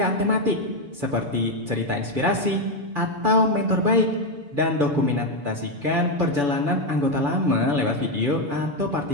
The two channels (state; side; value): late; left; 6.9 ms